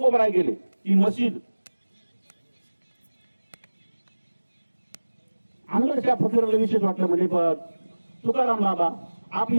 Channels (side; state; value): both; inverted; correlation -1.00